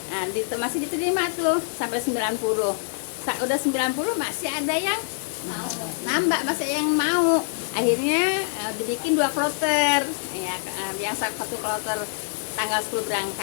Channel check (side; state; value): right; silent; digital silence